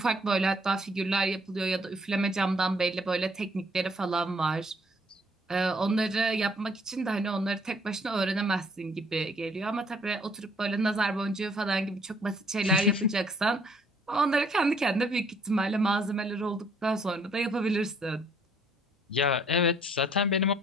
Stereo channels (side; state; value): both; normal; correlation 0.63